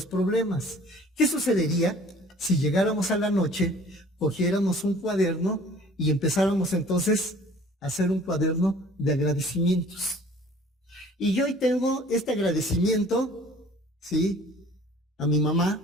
problemas. ¿Qué sucedería si llegáramos a la noche, cogiéramos un cuaderno y empezáramos entonces a hacer un cuaderno de agradecimientos? Y yo hoy tengo este agradecimiento, ¿sí?, a mi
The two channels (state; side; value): normal; both; correlation 0.50